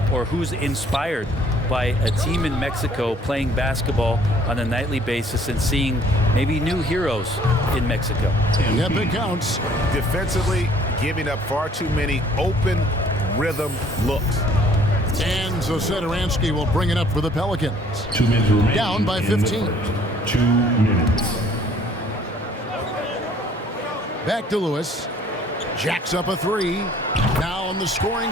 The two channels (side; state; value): both; normal; correlation 0.58